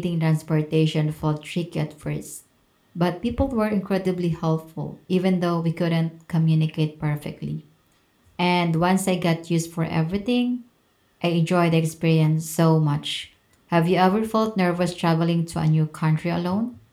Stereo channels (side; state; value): both; identical; correlation 1.00